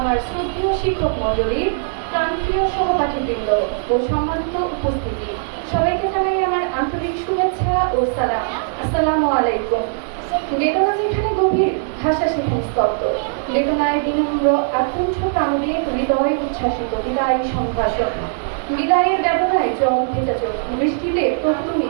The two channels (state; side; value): silent; left; digital silence